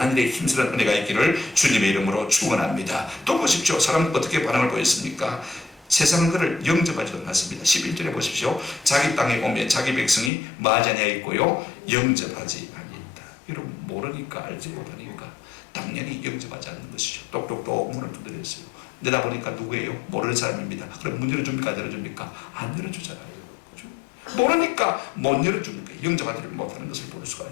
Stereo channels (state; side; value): drops out; right; at 10.3 s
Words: 일에 힘쓰는 은혜가 있기를 주님의 이름으로 축원합니다. 또 보십시오. 사람은 어떻게 반응을 보였습니까? 세상은 그를 영접하지도 않았습니다. 11절에 보십시오. 자기 땅에 오면 자기 백성이 마자냐에 있고요 영접하지 아니했다. 여러분, 모르니까 알지 못하니까 당연히 영접하지 않는 것이죠. 똑똑똑 문을 두드렸어요. 내다보니까 누구예요? 모르는 사람입니다. 그럼 문 열어줍니까? 안 열어줍니까? 안 열어주잖아요. 그렇죠? 모르니까 못 열어줍니까? 영접하지를 못하는 것을 볼 수가